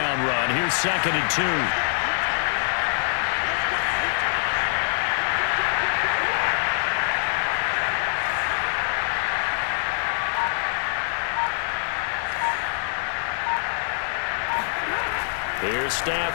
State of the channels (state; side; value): silent; right; digital silence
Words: run. Here's 2nd and 2. Here's